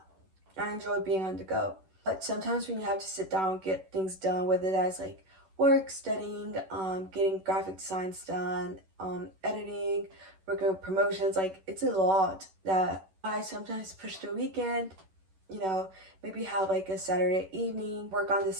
I enjoy being on the go. But sometimes when you have to sit down, get things done, whether that's like work, studying, getting graphic designs done, editing, working on promotions, like it's a lot that I sometimes push to a weekend, you know, maybe have like a Saturday evening, work on this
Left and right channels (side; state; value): left; late; 11 ms